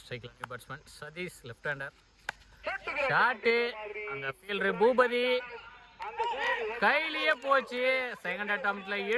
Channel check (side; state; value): both; identical; correlation 1.00